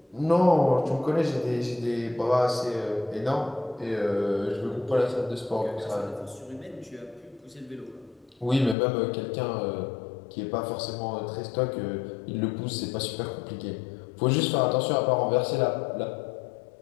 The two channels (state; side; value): drops out; right; at 8.8 s